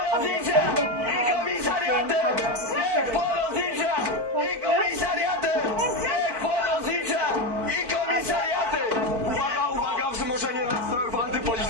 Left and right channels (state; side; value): late; left; 4.5 ms